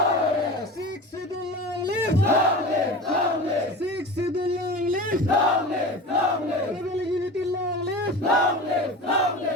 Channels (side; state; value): both; normal; correlation 0.32